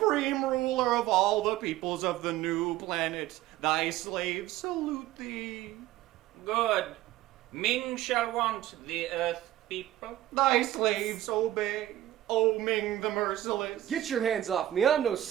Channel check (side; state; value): left; quieter; 14.0 dB